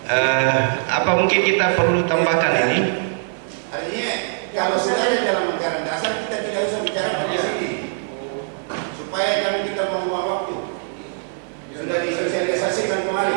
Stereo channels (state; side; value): silent; left; 57 dB below the other